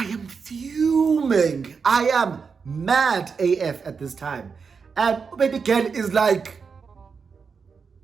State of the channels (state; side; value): quieter; left; 5.6 dB